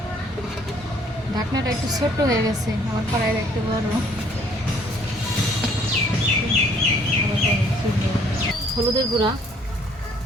ঢাকনাটা একটু ছোট হয়ে গেছে, আমার কড়াইয়ের একটু বড়। হলুদের গুঁড়া,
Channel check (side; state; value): both; normal; correlation 0.61